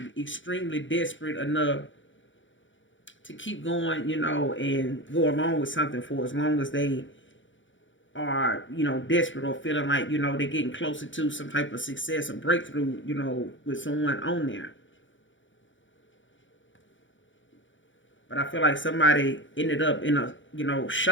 extremely desperate enough to keep going, and go along with something for as long as they are, desperate or feeling like, they're getting closer to some type of success or breakthrough, with someone on there. But I feel like somebody ended up in a,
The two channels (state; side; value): late; right; 0.56 ms